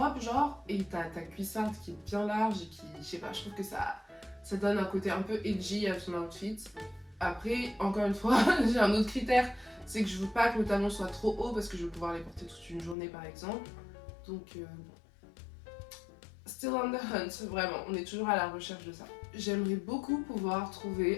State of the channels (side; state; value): right; drops out; at 13.0 s